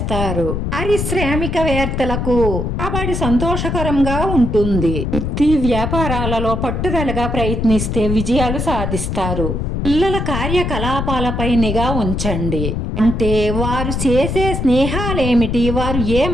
పారిశ్రామికవేత్తలకు రాబడి సంతోషకరంగా ఉంటుంది. వృత్తి వ్యాపారాలలో పట్టుదలగా ప్రయత్నిస్తే విజయాలు సాధిస్తారు. పిల్లల కార్యకలాపాలపై నిఘా ఉంచండి. అంటే వారు చేసే స్నేహాలేమిటి, వారు ఏ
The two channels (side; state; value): left; noise; rumble, 2 dB below the sound